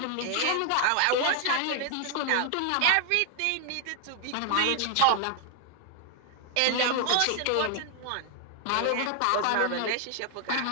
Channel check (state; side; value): different; both; correlation 0.00